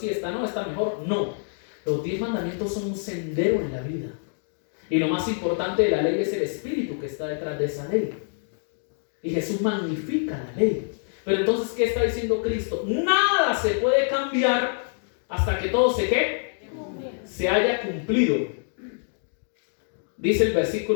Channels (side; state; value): right; silent; digital silence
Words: esta no, esta mejor. No, los 10 mandamientos son un sendero en la vida. Y lo más importante de la ley es el espíritu que está detrás de esa ley. Y Jesús magnifica la ley. Pero entonces, ¿qué está diciendo Cristo? Nada se puede cambiar hasta que todo se haya cumplido. Dice el